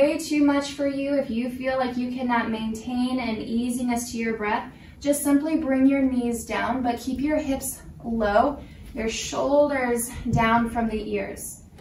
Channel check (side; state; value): both; identical; correlation 1.00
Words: too much for you, if you feel like you cannot maintain an easiness to your breath, just simply bring your knees down, but keep your hips low, your shoulders down from the ears.